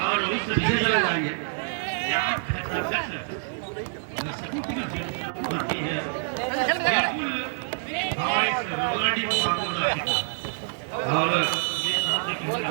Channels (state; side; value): silent; left; digital silence